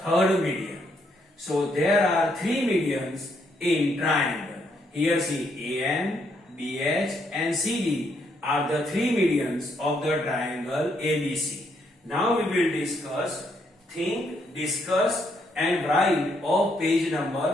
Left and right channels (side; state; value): both; normal; correlation 0.74